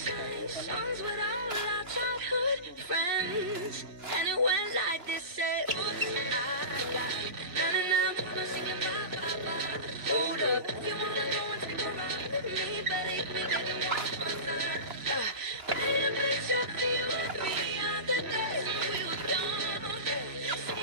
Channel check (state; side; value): late; left; 2.9 ms